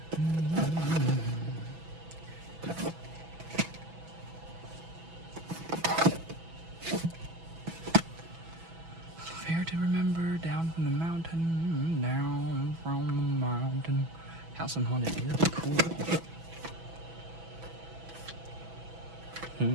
House on Haunted Hill. Cool.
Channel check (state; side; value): late; left; 6.1 ms